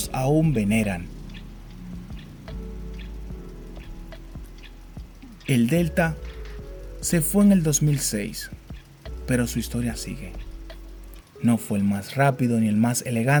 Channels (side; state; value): both; identical; correlation 1.00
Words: aún veneran. El Delta se fue en el 2006, pero su historia sigue. No fue el más rápido ni el más